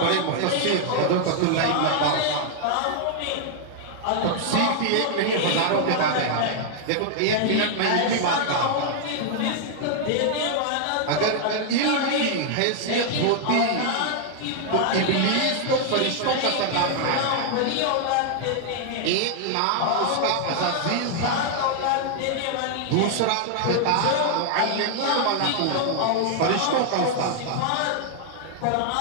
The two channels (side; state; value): both; different; correlation 0.00